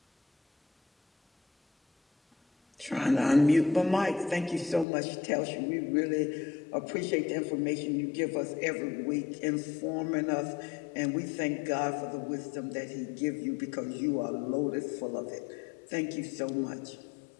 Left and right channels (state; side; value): drops out; right; at 4.9 s